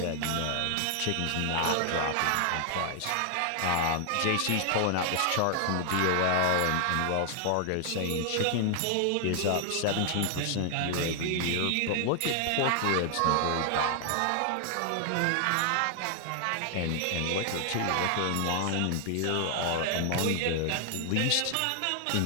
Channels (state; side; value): different; both; correlation 0.00